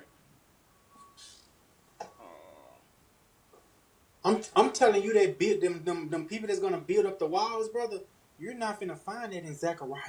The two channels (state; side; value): identical; both; correlation 1.00